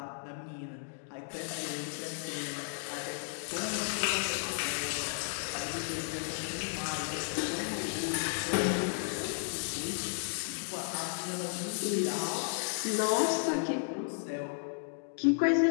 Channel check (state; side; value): silent; right; digital silence